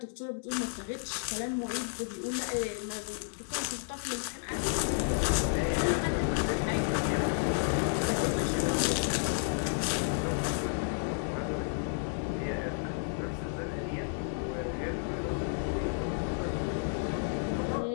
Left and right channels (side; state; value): right; silent; digital silence